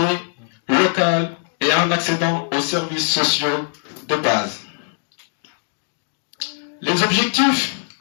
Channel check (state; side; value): silent; right; digital silence